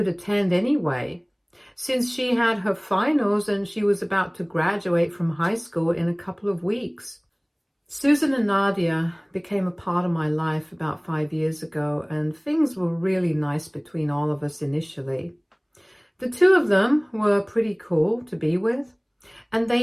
attend anyway, since she had her finals and she was about to graduate from high school in a couple of weeks. Susan and Nadia became a part of my life about 5 years ago, and things were really nice between all of us initially. The two of them were pretty cool to be with, and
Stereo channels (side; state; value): both; identical; correlation 1.00